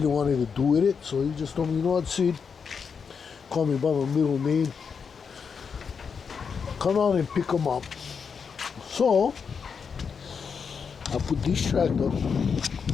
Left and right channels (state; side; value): quieter; right; 6.1 dB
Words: wanted to do with it. So he just told me, what, Sid, call me by my middle name, come out and pick them up. So I put this tractor